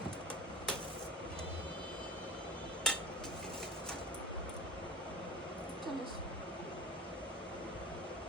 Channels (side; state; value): both; normal; correlation 0.36